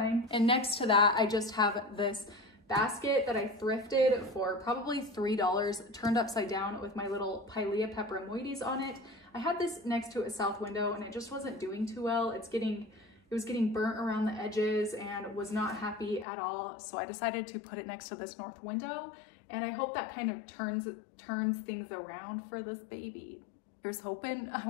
And next to that, I just have this basket that I thrifted for probably $3, turned upside down with my little Pilea peperomoides on it. I had this next to a south window and it just wasn't doing too well. It was getting burnt around the edges and was not happy at all. So I decided to put it next to this north window, and I hope that kind of turns things around for this baby. Here's hoping. I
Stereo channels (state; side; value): drops out; right; at 16.2 s